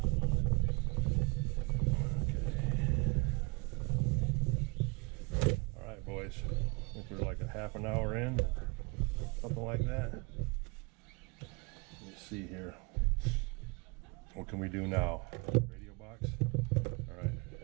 boys, I think we're like a half an hour in, something like that. Let's see here. What can we do now? Radio box? Alright,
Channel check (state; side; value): quieter; left; 29.1 dB